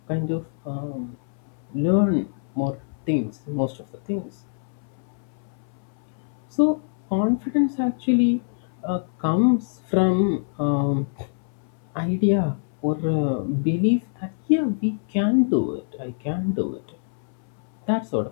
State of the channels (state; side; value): silent; right; 62 dB below the other